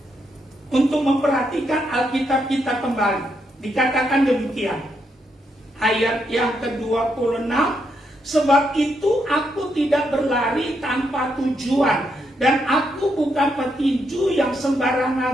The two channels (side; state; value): both; normal; correlation 0.79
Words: untuk memperhatikan Alkitab kita kembali. Dikatakan demikian, ayat yang ke-26, sebab itu aku tidak berlari tanpa tujuan, dan aku bukan petinju yang